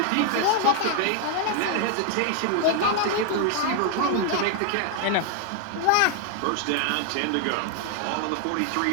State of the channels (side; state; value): both; different; correlation 0.00